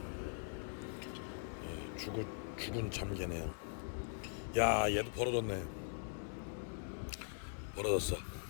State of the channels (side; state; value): right; silent; digital silence